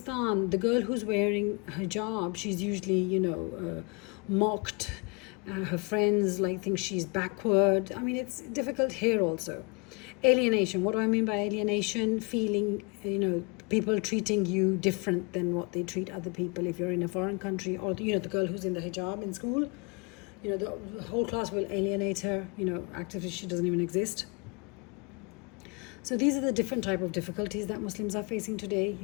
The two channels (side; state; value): right; quieter; 32.0 dB